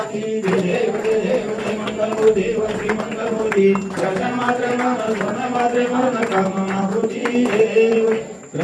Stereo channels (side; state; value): both; identical; correlation 1.00